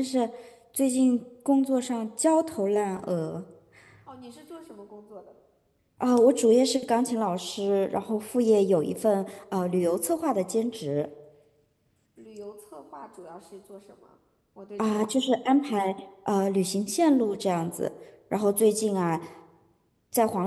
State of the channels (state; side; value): identical; both; correlation 1.00